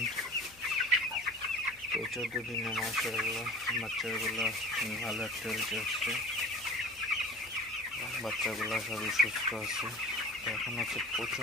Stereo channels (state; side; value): noise; left; hum, 25 dB below the sound